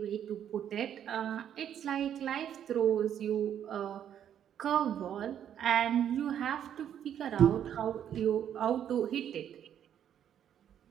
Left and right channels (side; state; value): left; quieter; 9.6 dB